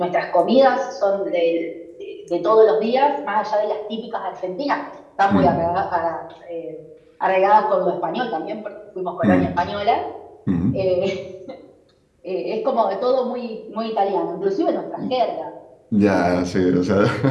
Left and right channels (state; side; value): identical; both; correlation 1.00